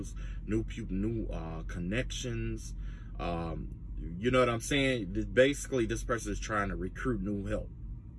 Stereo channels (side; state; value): both; identical; correlation 1.00